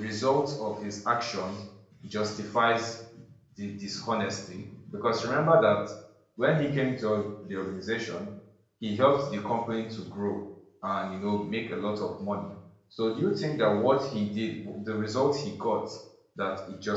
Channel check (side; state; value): both; identical; correlation 1.00